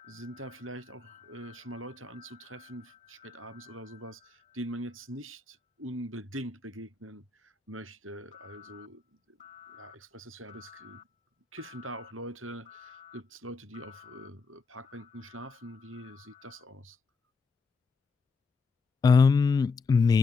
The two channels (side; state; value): right; quieter; 4.4 dB